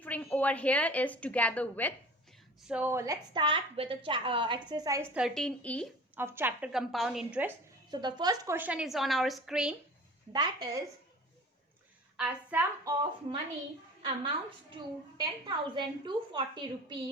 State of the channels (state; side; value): normal; both; correlation 0.41